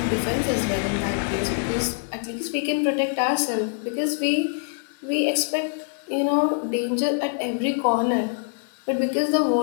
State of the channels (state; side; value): silent; right; digital silence